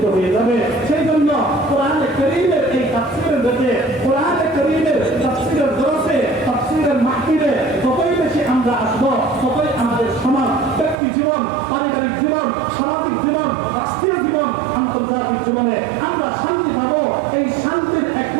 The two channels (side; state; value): left; drops out; at 11.0 s